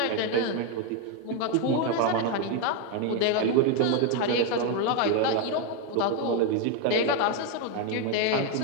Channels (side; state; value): both; different; correlation 0.02